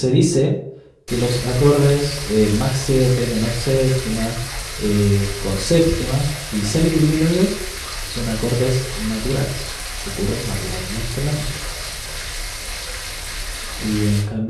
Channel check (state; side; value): identical; both; correlation 1.00